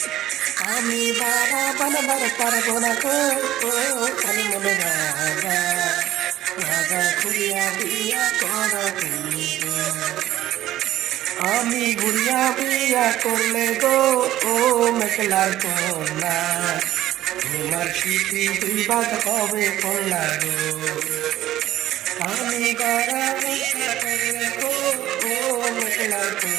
আমি পারা বানাবার পারবো না গো, ও খালি মনে রাজা রাজা ঘুরিয়া দিয়া কর তুমি গো। আমি ঘুরিয়া বিয়া করলে গো, ও মেঘলার কন্যা তোমার স্মৃতি দুই ভাগ হবে কন্যা গো। আমি গারা বিয়া করলে গো, ও মেঘলার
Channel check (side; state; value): left; quieter; 13.8 dB